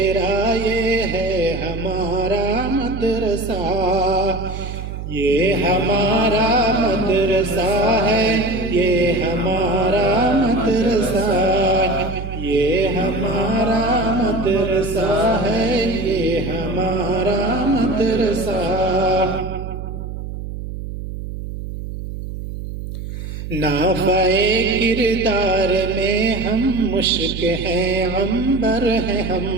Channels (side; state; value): right; noise; hum, 8 dB below the sound